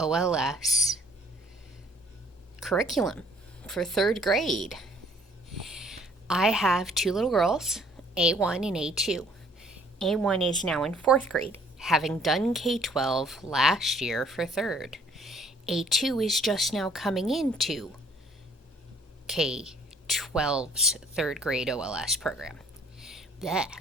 curriculum for third grade. I have two little girls, A1 and A2. A1 is now in fourth grade, having done K12 last year for third. A2 is just now coming into K12's third grade OLS program. Blech,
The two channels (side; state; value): both; normal; correlation 0.60